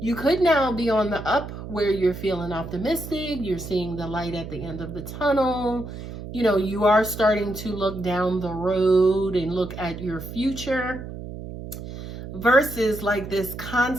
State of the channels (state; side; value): noise; right; hum, 10 dB below the sound